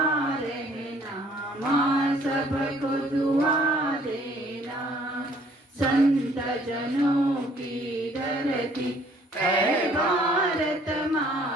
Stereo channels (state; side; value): normal; both; correlation 0.59